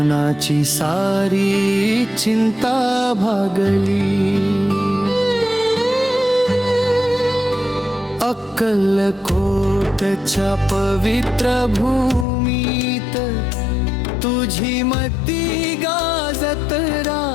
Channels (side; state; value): right; drops out; at 12.2 s